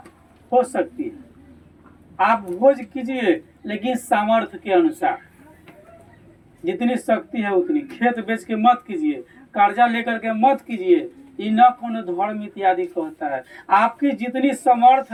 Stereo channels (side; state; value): both; identical; correlation 1.00